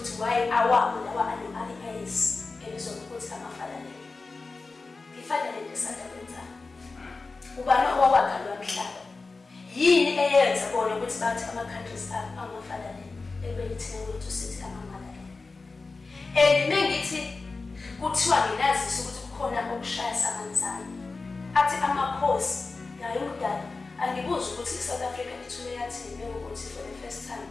why awabo lawa ano-IAS ebizwa ngokuthi ama-fatherland. I-fatherland esanda kwenzani? Ubani owawakha lo mhlaba? Yini eyenza bona ukuthi bathi ama-countries ama-fatherland ebelithina kwethu sithi ama-motherland? And mengithi kuthiwa nginazisa ukuthi kukhona okushaya samanzana athi amakhosi nayo umdala angibuza ukuthi i-South Africa ithule yathini ukuthi for the first time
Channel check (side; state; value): right; quieter; 3.9 dB